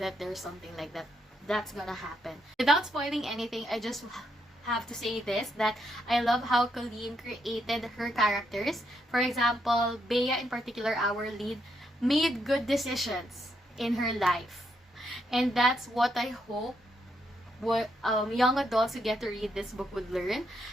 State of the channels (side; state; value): both; normal; correlation 0.78